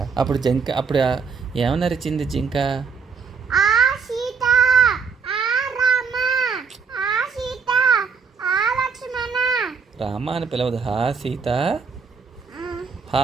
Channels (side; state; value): left; quieter; 5.5 dB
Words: అప్పుడు ఏమన్నా అరిచింది జింక? ఆ సీత, ఆ రామ, ఆ సీత, ఆ లక్ష్మణ. రామ అని పిలవదు, హా సీత, హా